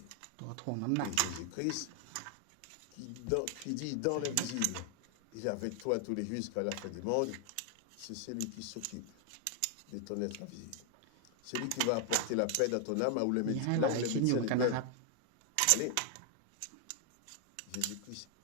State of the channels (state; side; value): different; both; correlation 0.00